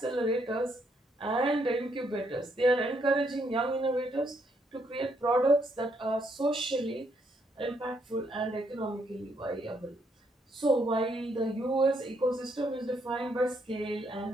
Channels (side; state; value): both; normal; correlation 0.74